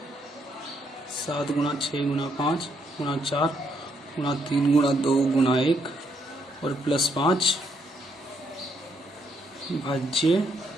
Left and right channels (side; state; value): both; normal; correlation 0.74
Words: 7 गुणा 6 गुणा 5 गुणा 4 गुणा 3 गुणा 2 गुणा 1 और प्लस 5 भाज्य